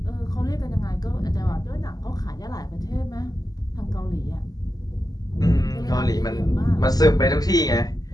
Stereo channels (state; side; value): late; right; 0.18 ms